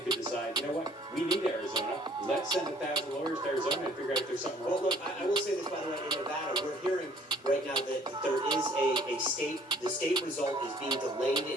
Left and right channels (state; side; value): normal; both; correlation 0.57